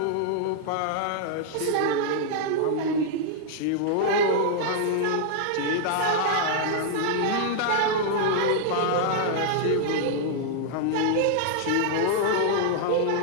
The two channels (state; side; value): different; both; correlation -0.01